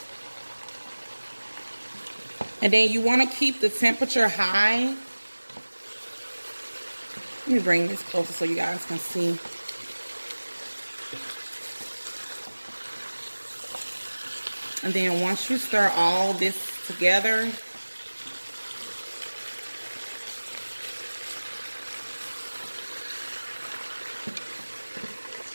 And then you want to keep the temperature high. Let me bring this closer so you guys can see. And then once you stir all this together,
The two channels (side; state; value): both; inverted; correlation -1.00